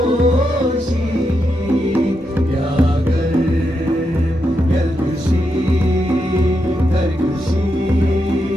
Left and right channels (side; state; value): both; normal; correlation 0.84